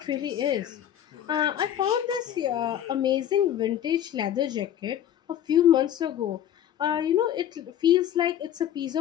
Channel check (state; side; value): quieter; right; 10.6 dB